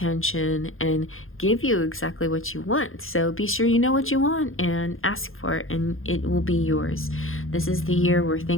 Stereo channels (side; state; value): right; late; 0.60 ms